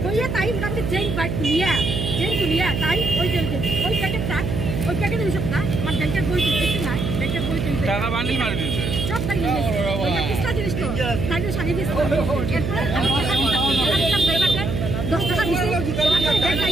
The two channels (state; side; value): noise; right; hum, 2 dB below the sound